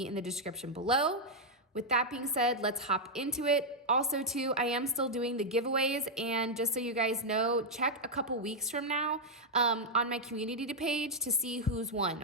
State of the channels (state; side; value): normal; both; correlation -0.01